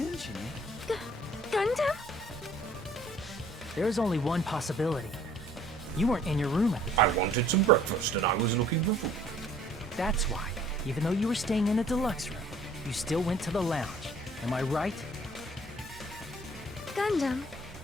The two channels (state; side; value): normal; both; correlation 0.57